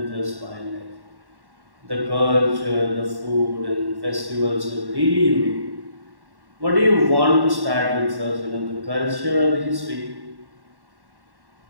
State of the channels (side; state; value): left; late; 1.1 ms